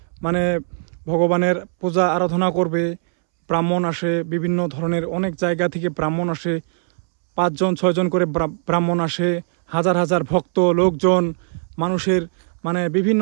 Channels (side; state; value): left; silent; 66 dB below the other